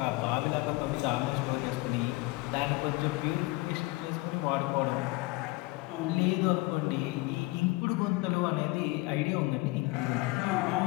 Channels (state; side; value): quieter; right; 22.1 dB